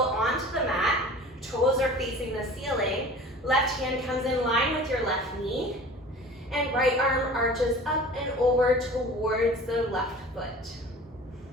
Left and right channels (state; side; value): normal; both; correlation 0.42